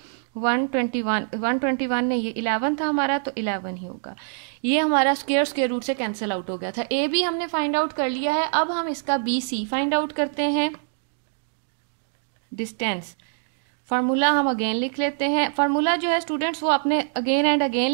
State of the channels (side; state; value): left; silent; digital silence